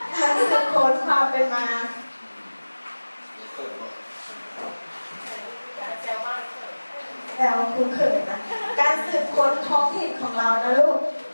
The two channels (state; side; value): inverted; both; correlation -1.00